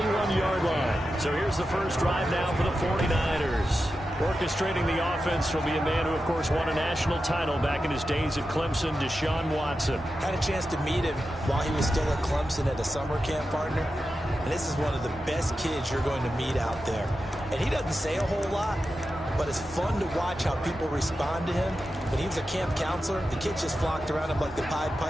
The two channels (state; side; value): normal; both; correlation 0.91